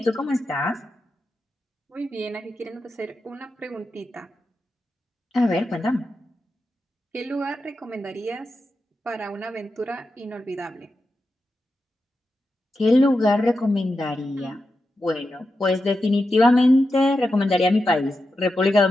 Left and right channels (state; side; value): normal; both; correlation 0.89